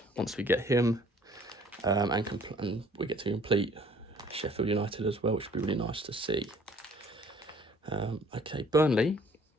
once we get him, and we get to complete Sheffield United as well, which would be really nice to see. Okay, Burnley,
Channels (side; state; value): both; normal; correlation 0.56